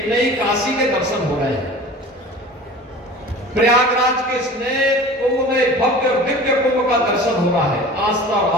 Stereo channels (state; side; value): normal; both; correlation 0.40